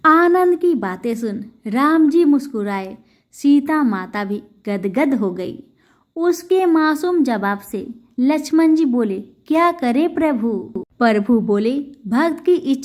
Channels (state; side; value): identical; both; correlation 1.00